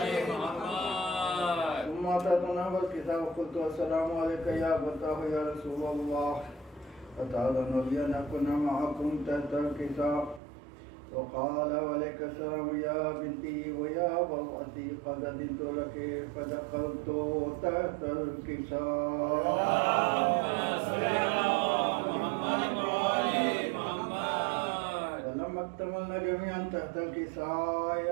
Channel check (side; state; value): left; drops out; at 10.4 s